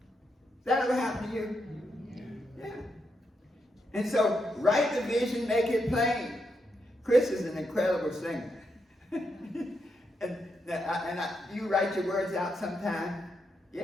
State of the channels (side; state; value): both; normal; correlation 0.82